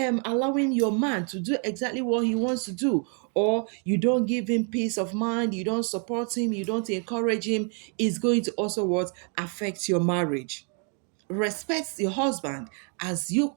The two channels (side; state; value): left; quieter; 39.8 dB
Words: allowing your man to do exactly what he wants to do, or you don't give him peace of mind, you don't support him, you don't encourage him, it's going to also what affect your marriage. Respect your husband as you